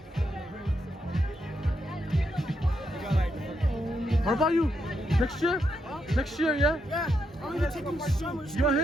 What about you? Next year? Next year, yeah? Yeah, I'm gonna taking summer You school.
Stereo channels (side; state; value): both; normal; correlation 0.81